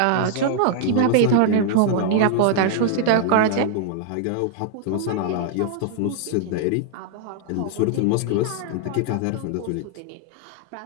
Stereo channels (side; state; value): both; different; correlation 0.00